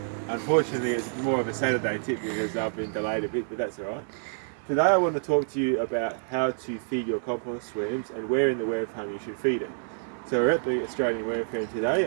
Unfortunately, it's more of a Saturday tip because I've been delayed a bit, but that's alright. Today I want to talk to you about how to feed your compost worms and where in the worm farm you should feed it. So we're at the Australian Worm Firm today.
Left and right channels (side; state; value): left; silent; digital silence